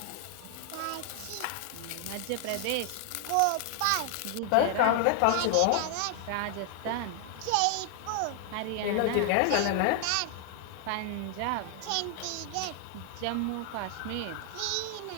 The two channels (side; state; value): both; different; correlation 0.00